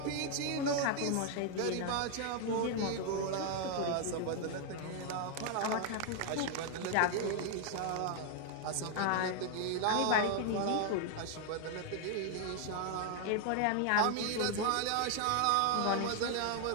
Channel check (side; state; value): both; different; correlation 0.00